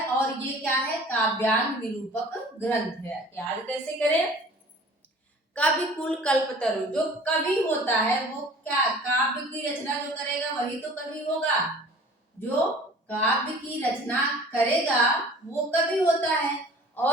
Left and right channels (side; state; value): both; normal; correlation 0.47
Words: और ये क्या है? काव्यांग निरूपक ग्रंथ है। याद कैसे करें? कविकुल कल्पतरु, जो कवि होता है वो क्या, काव्य की रचना जो करेगा वही तो कवि होगा। जो काव्य की रचना करेगा वो कवि होता है।